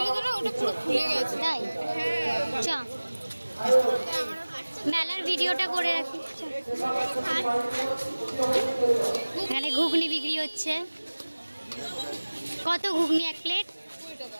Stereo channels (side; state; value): both; inverted; correlation -1.00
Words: তো না, ওটা পুরো খুলে গেছে। তাই চ মেলার ভিডিওটা করে রাখি। এখানে ঘুগনি বিক্রি হচ্ছে। কত ঘুগনি এক প্লেট?